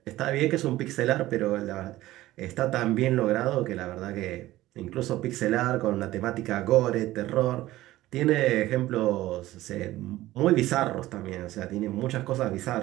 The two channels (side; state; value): left; quieter; 16.2 dB